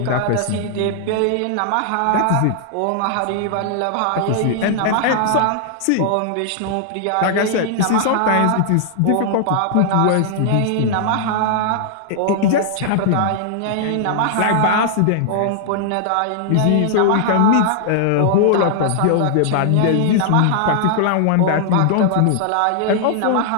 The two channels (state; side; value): different; both; correlation -0.01